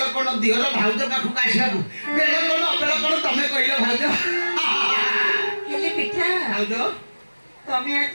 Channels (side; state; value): both; inverted; correlation -1.00